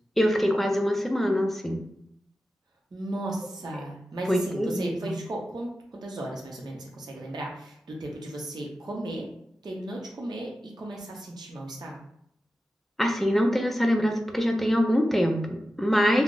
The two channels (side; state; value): both; normal; correlation 0.92